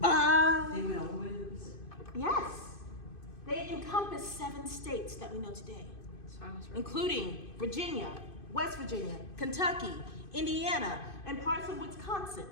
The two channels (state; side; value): late; right; 2.5 ms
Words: They went all the way to the Pacific. Yes. They encompass 7 states that we know today, So I was right. including Virginia, West Virginia, Kentucky, Indiana, and parts of Wisconsin.